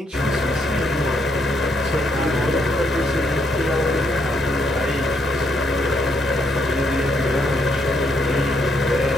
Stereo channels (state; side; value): normal; both; correlation 0.74